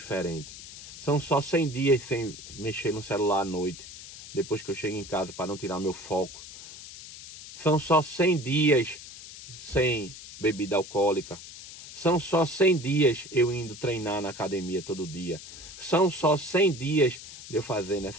São só 100 dias sem mexer no celular à noite, depois que eu chego em casa, para não tirar meu foco. São só 100 dias sem bebida alcoólica. São só 100 dias eu indo treinar na academia todo dia. São só 100 dias de eu fazendo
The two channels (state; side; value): noise; left; hiss, 14 dB below the sound